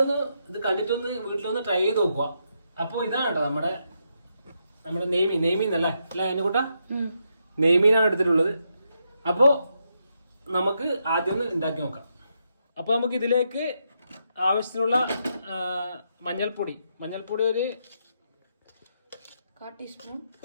ഒന്ന് ഇത് കണ്ടിട്ടൊന്ന് വീട്ടിലൊന്ന് ട്രൈ ചെയ്ത് നോക്കുക. അപ്പോൾ ഇതാണ് കേട്ടോ നമ്മുടെ നെയ്മീൻ അല്ലേ അതിനെക്കൂട്ടാ നെയ്മീനാണ് എടുത്തിട്ടുള്ളത്. അപ്പോൾ നമുക്ക് ആദ്യം ഒന്ന് ഉണ്ടാക്കി നോക്കാം. അപ്പോൾ നമുക്ക് ഇതിലേക്ക് ആവശ്യത്തിനുള്ള മഞ്ഞൾപ്പൊടി ഒരു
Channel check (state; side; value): inverted; both; correlation -0.81